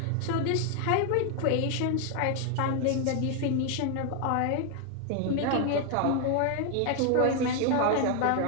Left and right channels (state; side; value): different; both; correlation 0.00